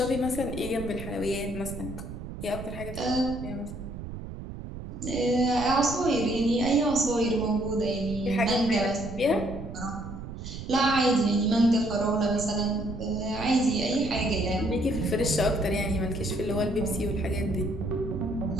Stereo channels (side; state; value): right; noise; rumble, 9 dB below the sound